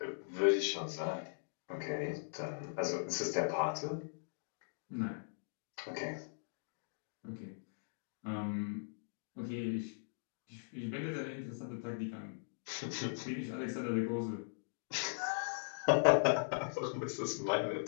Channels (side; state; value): right; silent; digital silence